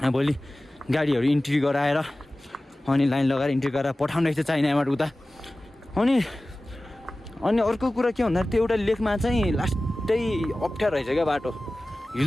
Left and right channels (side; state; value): both; normal; correlation 0.97